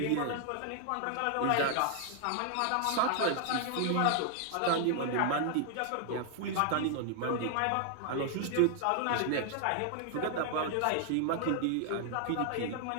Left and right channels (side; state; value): both; different; correlation 0.00